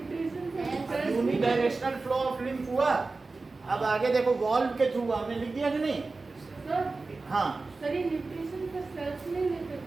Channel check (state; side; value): quieter; left; 3.7 dB